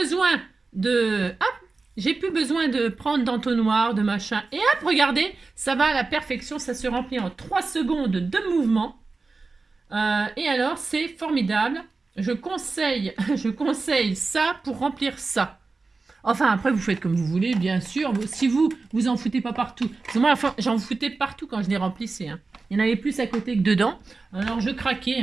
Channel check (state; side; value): quieter; left; 3.9 dB